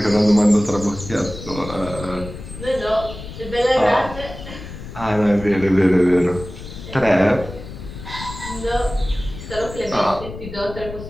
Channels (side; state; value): left; noise; rumble, 12 dB below the sound